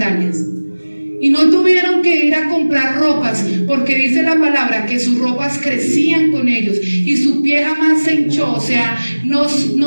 Y no tuvieron que ir a comprar ropas, porque dice la palabra que sus ropas crecían con ellos y su pie jamás se hinchó, o sea, no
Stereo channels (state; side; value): inverted; both; correlation -1.00